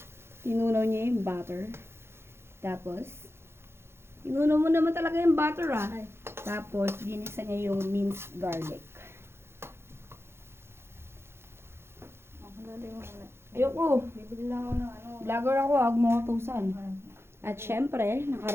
tinunaw niya yung butter. Tapos, tinunaw mo naman talaga yung butter ah. Tapos, ginisa niya yung minced garlic. Ayoko. Bibili lang ako ng ano. Vlogger ako, huwag mo utusan. At syempre,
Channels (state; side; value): late; left; 0.12 ms